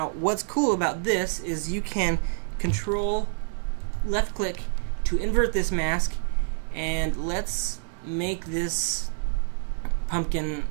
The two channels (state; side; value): silent; left; 60 dB below the other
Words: what's cool about this is you can control left click to invert this mask, and let's make this pumpkin